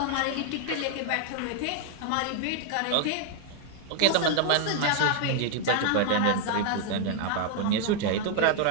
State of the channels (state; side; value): different; both; correlation 0.00